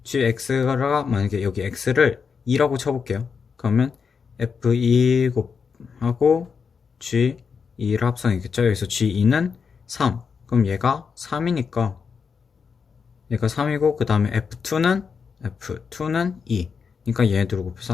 gx가 만약에 여기 x를 2라고 쳐볼게요. 그러면 f2 곱하고 g2를 합성이겠죠. 여기서 g2는 3. 그럼 얘가 3이니까 얘가 3이고 그 다음에 F2는 2. 그러니까 얘네들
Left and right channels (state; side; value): quieter; right; 5.9 dB